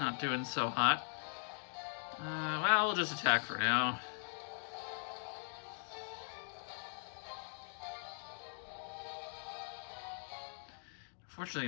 doing so hot. Well, we'll just attack for now. Unfortunately,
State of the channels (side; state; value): right; silent; digital silence